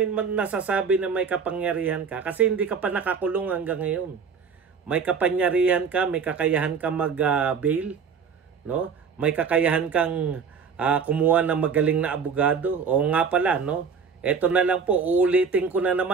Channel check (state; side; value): quieter; left; 6.0 dB